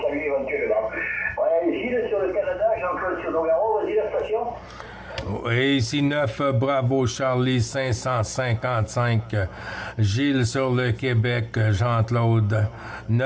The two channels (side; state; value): both; identical; correlation 1.00